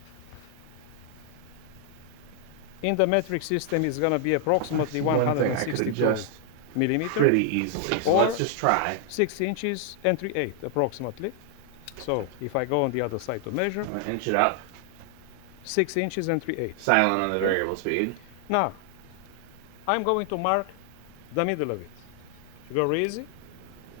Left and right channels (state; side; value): different; both; correlation 0.00